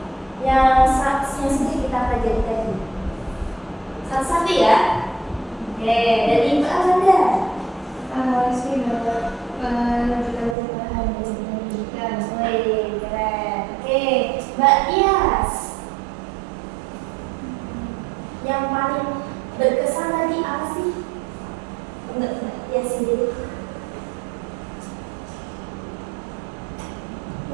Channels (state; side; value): drops out; left; at 10.6 s